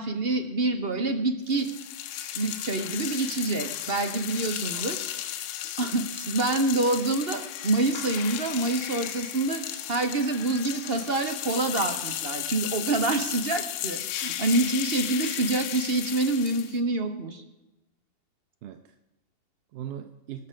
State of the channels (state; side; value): late; left; 2.8 ms